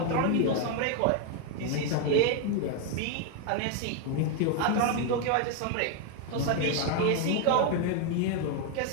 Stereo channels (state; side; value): different; both; correlation 0.01